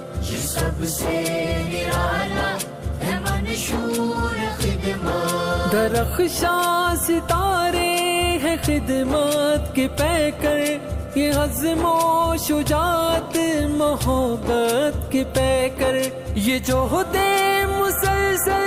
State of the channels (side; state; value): both; identical; correlation 1.00